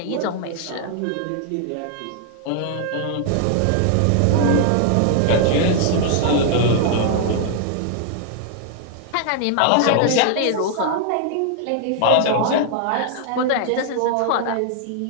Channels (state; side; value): different; both; correlation 0.00